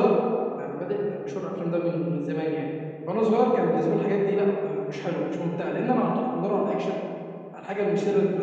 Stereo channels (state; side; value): identical; both; correlation 1.00